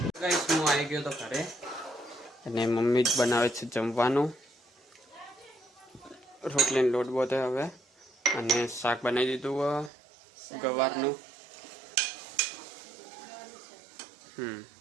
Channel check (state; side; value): drops out; left; at 9.9 s